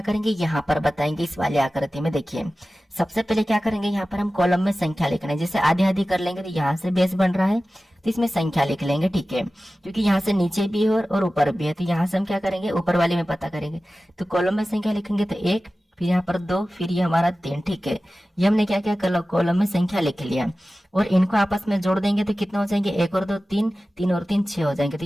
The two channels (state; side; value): normal; both; correlation 0.95